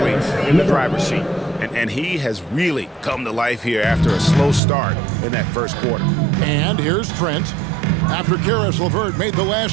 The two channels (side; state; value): left; drops out; at 4.6 s